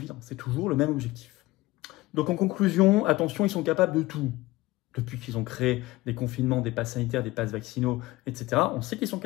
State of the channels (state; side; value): quieter; right; 19.3 dB